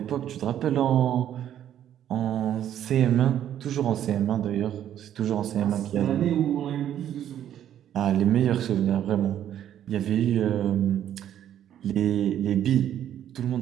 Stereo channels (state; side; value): quieter; left; 10.7 dB